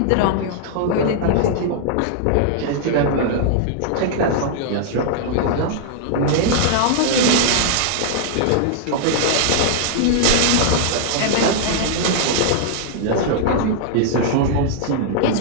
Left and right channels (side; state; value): both; different; correlation -0.01